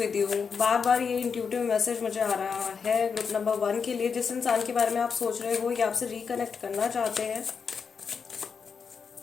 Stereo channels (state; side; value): quieter; right; 5.9 dB